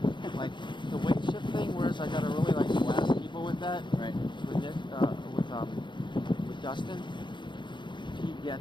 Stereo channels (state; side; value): late; right; 0.23 ms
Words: like the weight shift thing. Whereas I got to really like blast people with that. Right. With Nick, with Dustin, he